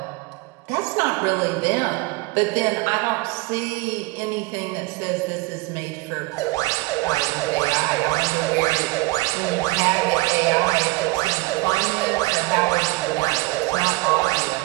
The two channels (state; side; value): quieter; left; 23.9 dB